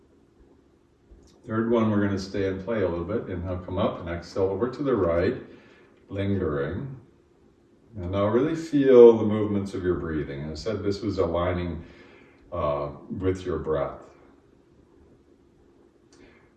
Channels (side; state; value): both; identical; correlation 1.00